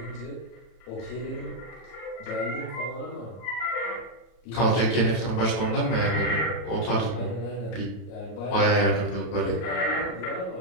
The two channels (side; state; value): right; late; 33 ms